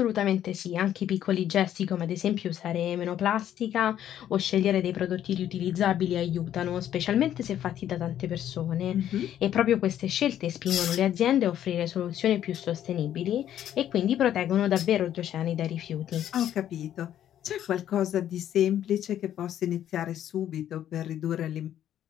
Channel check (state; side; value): quieter; right; 11.0 dB